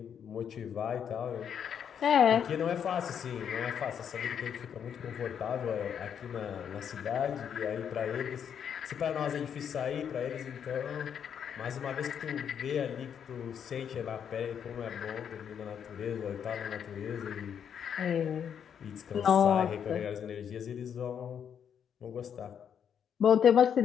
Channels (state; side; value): quieter; right; 8.1 dB